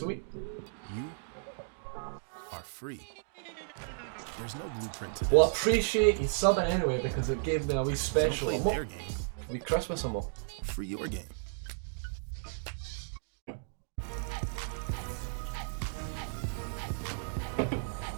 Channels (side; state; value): left; silent; digital silence